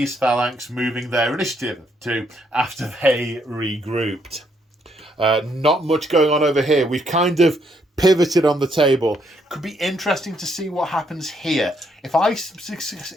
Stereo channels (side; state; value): both; normal; correlation 0.73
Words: phalanx moving their initiative to after they regrouped. Not much going on over here. We've kind of pivoted on the table. Could be interesting to see what happens here. If I am